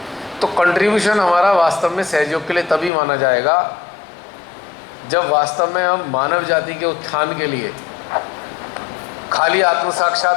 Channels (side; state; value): right; drops out; at 2.9 s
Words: तो कंट्रीब्यूशन हमारा वास्तव में सहयोग के लिए तभी माना जाएगा जब वास्तव में हम मानव जाति के उत्थान के लिए, खाली आत्म